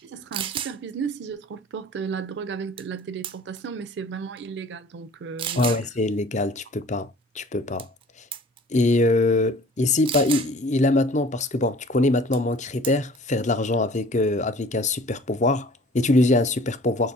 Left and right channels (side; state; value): both; normal; correlation 0.49